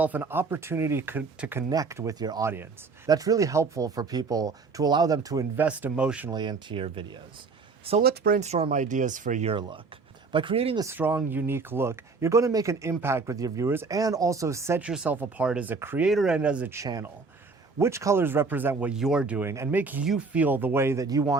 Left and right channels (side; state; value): left; quieter; 4.4 dB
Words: an opportunity to connect with your audience. That's really helpful for people to allow them to invest emotionally into your videos. So let's brainstorm ideas for your look. By creating a strong, unique look, you're going to make an impact with your viewers and also set yourself apart as a creator and as a channel. Which colors represent what you're doing and make you feel the way that you